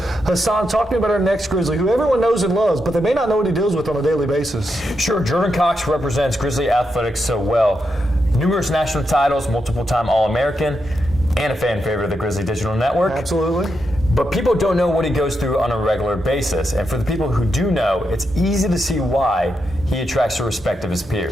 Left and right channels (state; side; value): normal; both; correlation 0.84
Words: Hassan, talk to me about our next Grizzly, who everyone knows and loves, but they may not know what he deals with on a daily basis. Sure, Jordan Cox represents Grizzly Athletics so well. Numerous national titles, multiple-time All-American, and a fan favorite of the Grizzly Digital Network. Absolutely. But people don't know what he goes through on a regular basis. And for the people who do know, it's easy to see why he attracts the respect of his